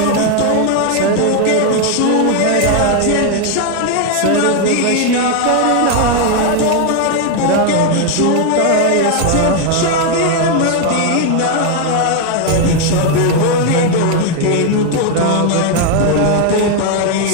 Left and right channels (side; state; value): both; different; correlation 0.01